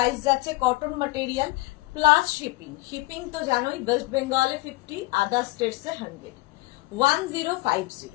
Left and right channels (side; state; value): right; quieter; 22.1 dB